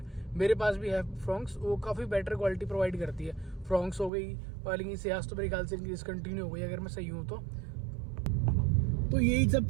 मेरे पास भी है फ्रॉन्क्स, वो काफ़ी बेटर क्वालिटी प्रोवाइड करती है। फ्रॉन्क्स हो गई, वाली सियाज तो मेरे ख्याल से इनकी डिसकंटिन्यू हो गई अगर मैं सही हूँ तो यही सब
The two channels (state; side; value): drops out; left; at 4.1 s